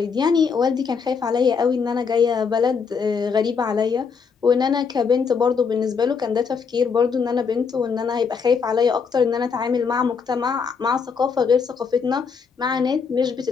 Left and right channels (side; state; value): right; quieter; 5.8 dB